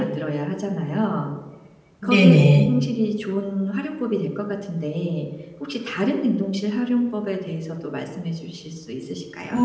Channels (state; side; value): identical; both; correlation 1.00